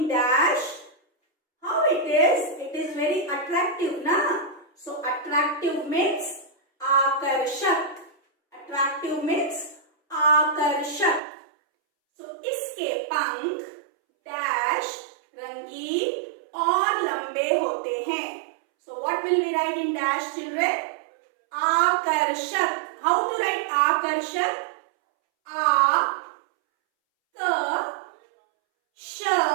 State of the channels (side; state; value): left; drops out; at 11.2 s